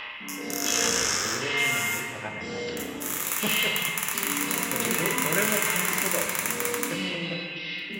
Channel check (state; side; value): identical; both; correlation 1.00